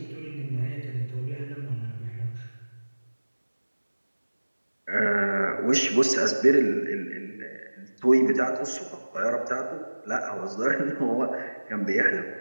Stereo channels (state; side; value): inverted; both; correlation -1.00